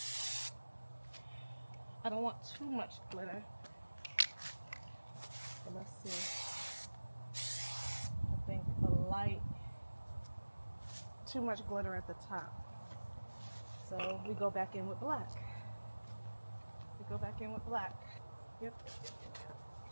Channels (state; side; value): inverted; both; correlation -1.00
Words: I don't want too much glitter. So let's see. I think a light, too much glitter at the top. So we go back in with black. Yep. Go back in with the black.